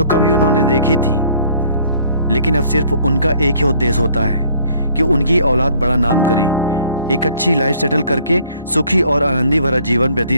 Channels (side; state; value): both; inverted; correlation -0.59